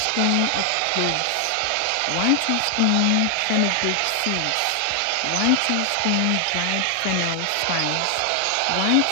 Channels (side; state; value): both; different; correlation 0.00